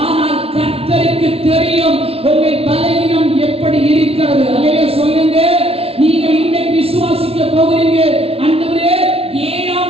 ஆனால் கர்த்தருக்கு தெரியும் உங்கள் பலவீனம் எப்படி இருக்கிறது. அல்லேலூயா சொல்லுங்க. நீங்க இன்னைக்கு விசுவாசிக்க போகிறீங்க. ஆண்டவரே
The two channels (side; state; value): left; late; 0.28 ms